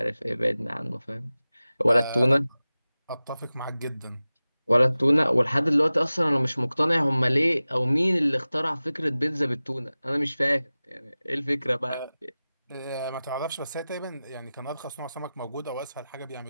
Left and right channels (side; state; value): both; inverted; correlation -0.97